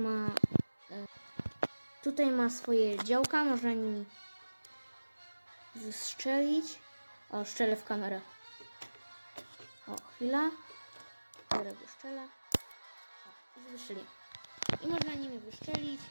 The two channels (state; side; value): inverted; both; correlation -1.00